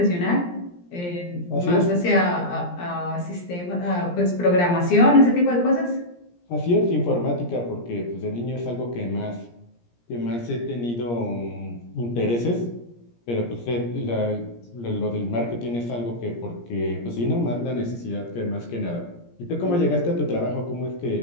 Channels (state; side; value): late; right; 17 ms